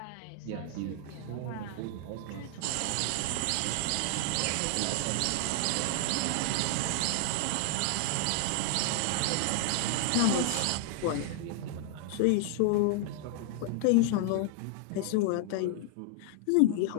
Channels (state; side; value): different; both; correlation 0.00